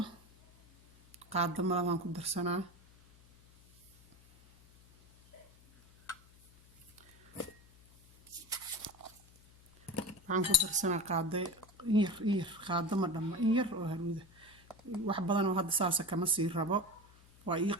qaado malabaan ku darsanaa waxaan ku darsanaa qaado yar qaado ma dhamma in yar oo haruuda wax badan oo hadda saasa kama sii rabo waa ii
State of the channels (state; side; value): noise; left; hum, 26 dB below the sound